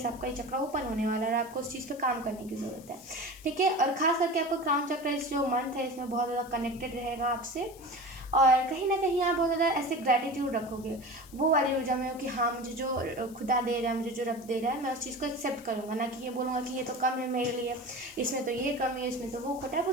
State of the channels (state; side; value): noise; left; hiss, 22 dB below the sound